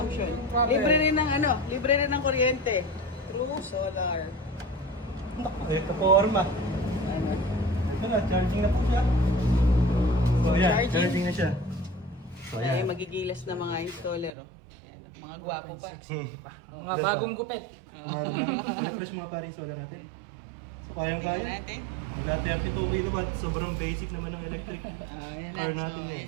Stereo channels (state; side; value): drops out; left; at 14.3 s